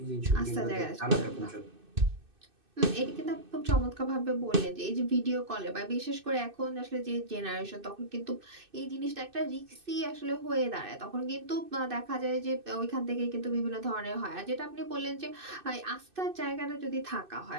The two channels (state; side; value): late; left; 2.6 ms